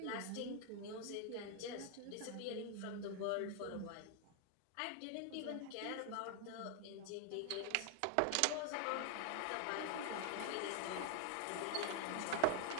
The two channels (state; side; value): different; both; correlation 0.00